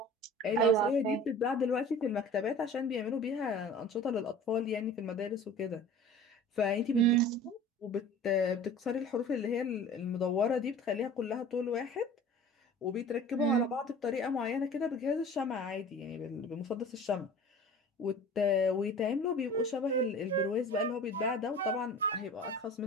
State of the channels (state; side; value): normal; both; correlation 0.41